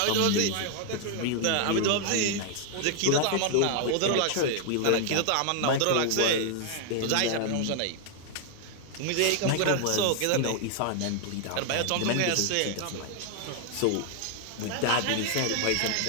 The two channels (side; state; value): both; different; correlation 0.00